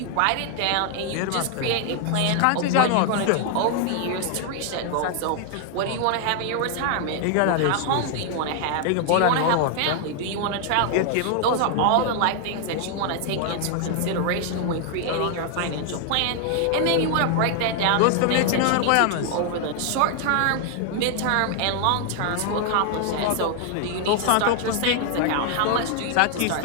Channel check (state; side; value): different; both; correlation 0.00